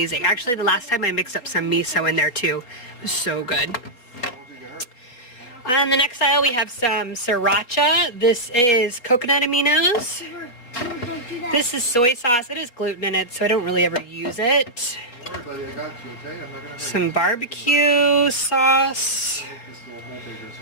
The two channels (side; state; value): right; late; 4.0 ms